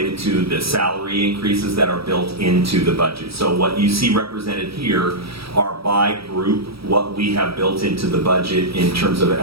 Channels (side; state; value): left; late; 0.76 ms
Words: to the salary increases that are built into the budget. So what you see represented here are by group what we have built into the budget in terms of